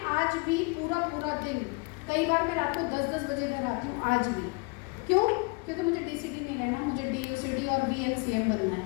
आज भी पूरा दिन, कई बार मैं रात को 10-10 बजे घर आती हूँ आज भी। क्यों? क्योंकि मुझे डीसीडी नहीं रहना, मुझे डीयूसीडी और VNCM बनना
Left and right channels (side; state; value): right; quieter; 29.3 dB